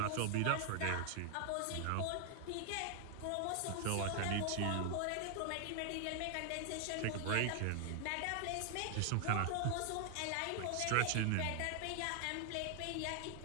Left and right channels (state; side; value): different; both; correlation 0.00